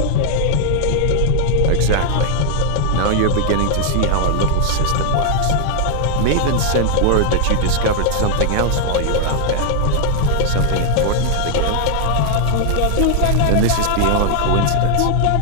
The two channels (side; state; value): both; different; correlation 0.00